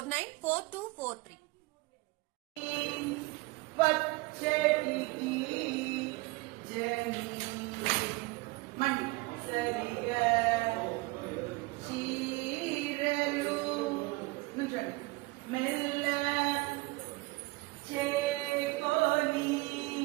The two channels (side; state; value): left; quieter; 23.4 dB